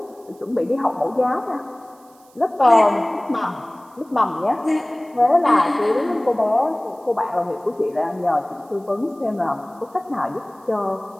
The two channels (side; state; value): right; noise; hiss, 30 dB below the sound